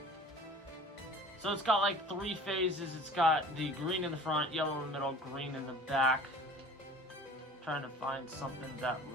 So it's got like 3 phases. It's got the green in the front, yellow in the middle, green in the back. I'm trying to find something that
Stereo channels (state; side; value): normal; both; correlation 0.44